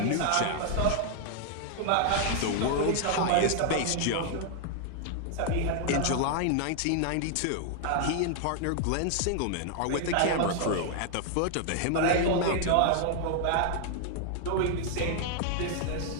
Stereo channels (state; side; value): different; both; correlation 0.00